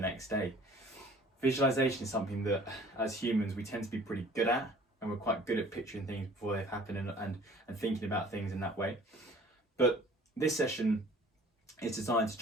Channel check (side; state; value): both; normal; correlation 0.50